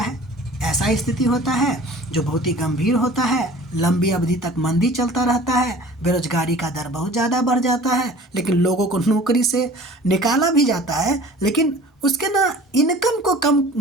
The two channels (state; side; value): normal; both; correlation 0.45